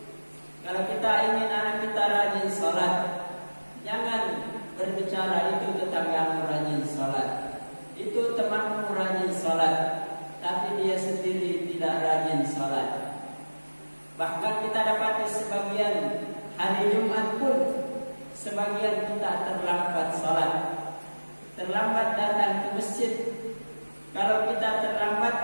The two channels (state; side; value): inverted; both; correlation -1.00